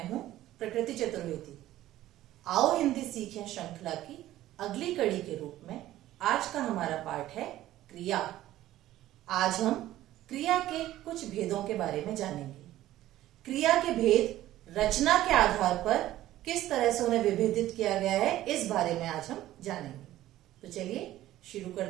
हूं प्रकृति चतुर्वेदी। आओ हिंदी सीखें श्रृंखला की अगली कड़ी के रूप में आज का हमारा पाठ है क्रिया। आज हम क्रिया के कुछ भेदों के बारे में जानेंगे। क्रिया के भेद रचना के आधार पर किस तरह से उन्हें विभेदित किया गया है, इस बारे में आज हम जानेंगे। तो चलिए शुरू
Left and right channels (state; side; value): quieter; left; 14.4 dB